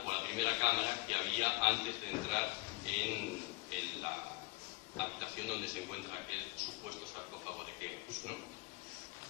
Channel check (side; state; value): right; quieter; 25.3 dB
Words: o la primera cámara que había antes de entrar en la habitación donde se encuentra aquel supuesto sarcófago de Keops, ¿no?